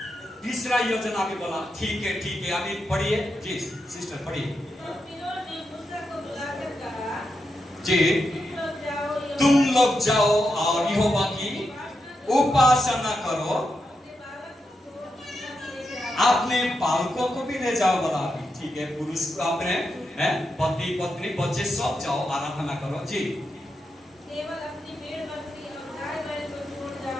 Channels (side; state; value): both; normal; correlation 0.86